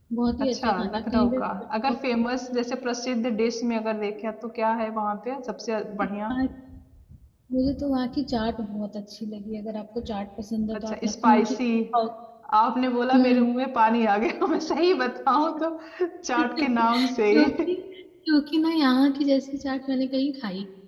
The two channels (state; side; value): identical; both; correlation 1.00